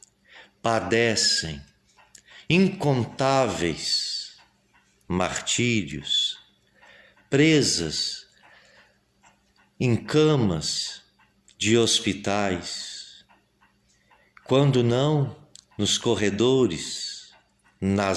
padecem incontáveis martírios, presas em camas de hospitais, quando não nos corredores,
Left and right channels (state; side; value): identical; both; correlation 1.00